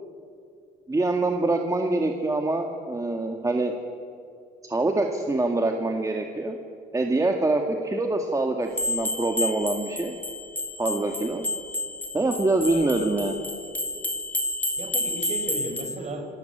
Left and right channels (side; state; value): both; normal; correlation 0.56